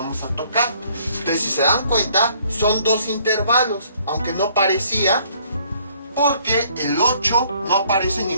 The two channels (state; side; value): inverted; both; correlation -0.62